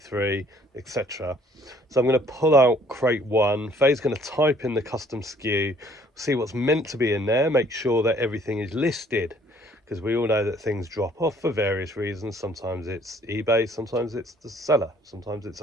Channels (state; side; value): normal; both; correlation 0.59